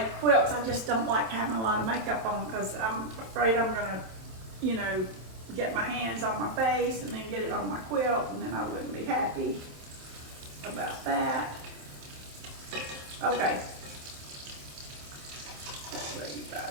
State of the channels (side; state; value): left; late; 27 ms